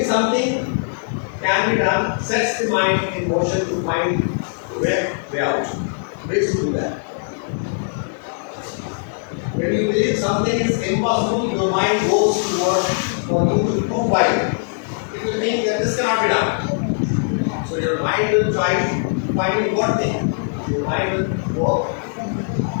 something can be done sets the mind in motion to find way out. Ways to do that. When you believe something is impossible, your mind goes to work for you to prove why. It will think that this cannot be done. So your mind will try finding what thing. Your mind will work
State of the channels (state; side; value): silent; right; digital silence